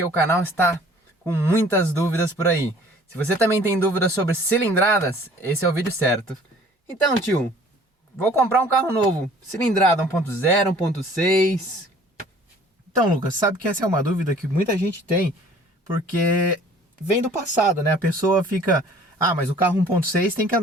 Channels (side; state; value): both; normal; correlation 0.52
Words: o canal está com muitas dúvidas por aí. Se você também tem dúvidas sobre cilindradas, esse é o vídeo certo. Então tio, vou comprar um carro novo, cilindrada 1.0, 1.6... Então, Lucas, sabe que essa é uma dúvida que muita gente tem, porque vem do passado, né? A pessoa fica... Ah, mas o carro 1.6 tem que